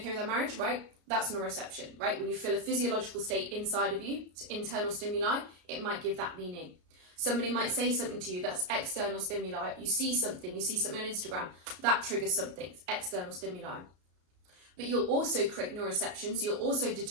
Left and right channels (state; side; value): late; left; 33 ms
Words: with our marriage? Right? That's neuroception, right? When you feel a physiological state inside of you, it's internal stimuli, it might give that meaning. Somebody might say something to you, that's external stimuli. You see something on Instagram, that triggers something, it's external stimuli. But you'll also create neuroception, so you'll also